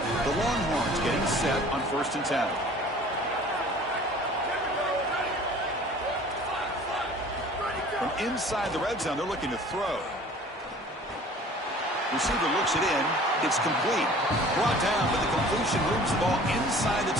The Longhorns getting set on 1st and 10. From inside the red zone, they're looking to throw. Receiver looks it in. It's complete. Brought down, but the completion moves the ball inside the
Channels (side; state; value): both; normal; correlation 0.47